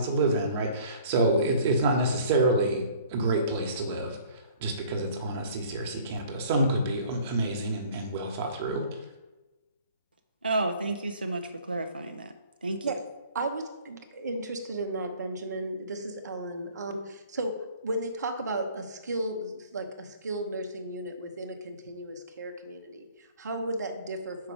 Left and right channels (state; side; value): inverted; both; correlation -0.52